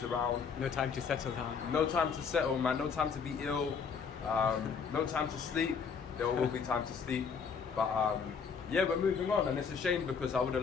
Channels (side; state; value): right; quieter; 6.0 dB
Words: around. No time to settle down. No time to settle, man. No time to be ill. No time to sleep. There will be time to sleep. But yeah, we're moving on, and it's a shame because I would